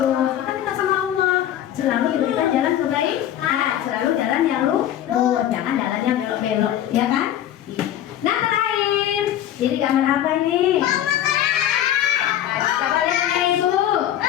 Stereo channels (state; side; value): quieter; right; 11.6 dB